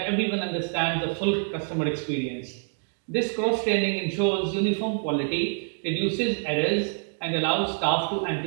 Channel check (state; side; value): silent; left; 61 dB below the other